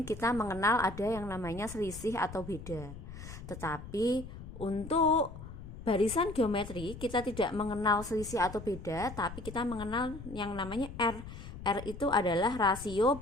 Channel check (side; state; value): left; noise; rumble, 12 dB below the sound